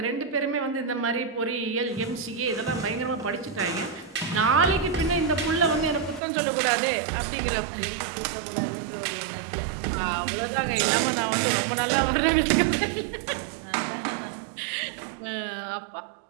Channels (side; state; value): left; drops out; at 6.2 s